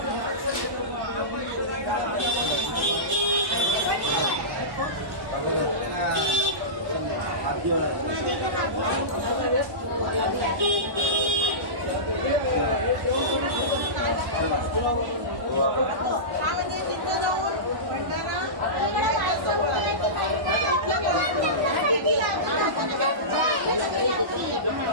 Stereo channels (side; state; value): left; late; 1.1 ms